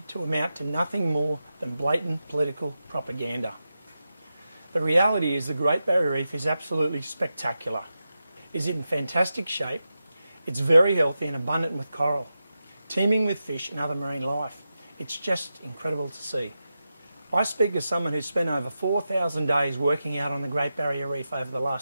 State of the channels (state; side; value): inverted; both; correlation -0.90